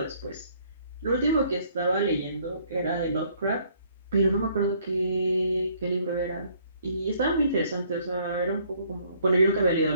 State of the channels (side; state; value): both; inverted; correlation -0.63